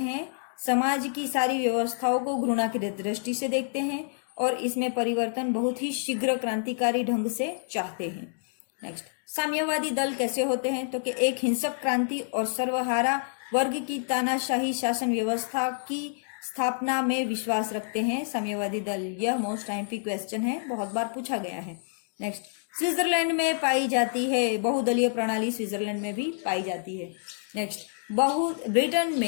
समाज की सारी व्यवस्थाओं को घृणा की दृष्टि से देखते हैं और इसमें परिवर्तन बहुत ही शीघ्र क्रांतिकारी ढंग से चाहते हैं। नेक्स्ट, साम्यवादी दल कैसे होते हैं? तो कि एक हिंसक क्रांति और सर्वहारा वर्ग की तानाशाही शासन व्यवस्था की स्थापना में विश्वास रखते हैं साम्यवादी दल। यह मोस्ट आईएमपी क्वेश्चन है, बहुत बार पूछा गया है। नेक्स्ट, स्विट्जरलैंड में पाई जाती है बहुदलीय प्रणाली। स्विट्जरलैंड में भी पाई जाती है। नेक्स्ट, ब्रिटेन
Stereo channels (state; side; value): silent; right; digital silence